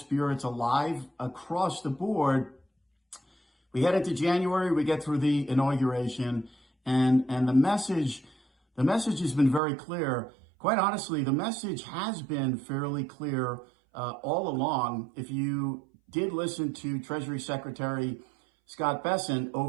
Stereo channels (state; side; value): drops out; left; at 9.6 s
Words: alive across the board. We head into January, we get through the inauguration, and the message has been very clear. Quite honestly, the message has been fairly clear all along. If you did listen to Treasury Secretary Scott Bessent